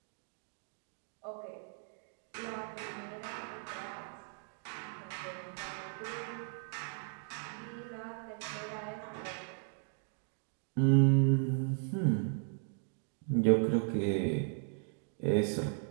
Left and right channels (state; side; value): silent; left; 53 dB below the other